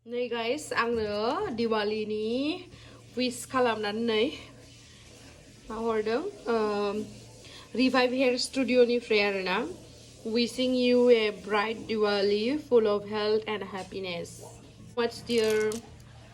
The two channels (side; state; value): both; identical; correlation 1.00